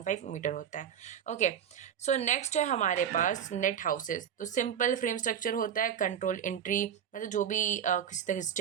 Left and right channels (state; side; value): quieter; left; 8.7 dB